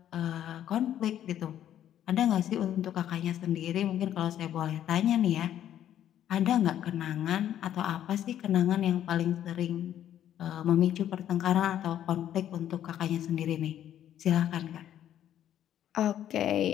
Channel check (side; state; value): right; quieter; 11.0 dB